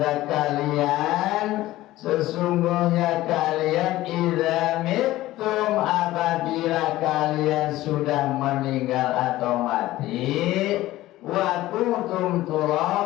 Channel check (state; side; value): quieter; right; 16.2 dB